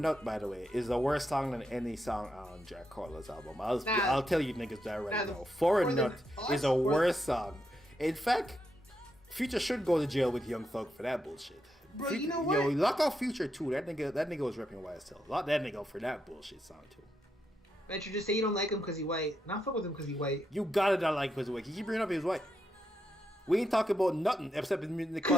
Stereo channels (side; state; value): both; normal; correlation 0.83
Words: by the way, is the worst song than any song on Jack Harlow's album. I'll tell you niggas that right now. For a Nut is a worse song. In fact, Future should go to jail with Young Thug for that bullshit. Bro, you know what? Yo, lock off Future too. That nigga was repping YSL. Lock that nigga for that bullshit song too. Bet you just say you don't like him because he's white. Not fuck with him because he's white. You gotta not like him because he's white. You keep bringing up his white. We ain't talking about nothing except the